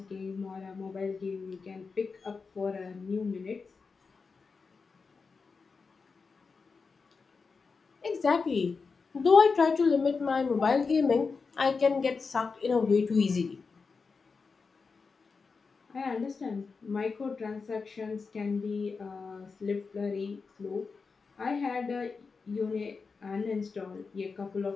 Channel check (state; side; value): quieter; right; 4.8 dB